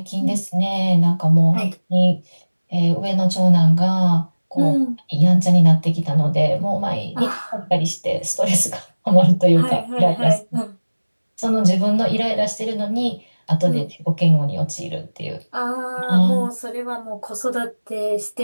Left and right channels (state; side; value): inverted; both; correlation -1.00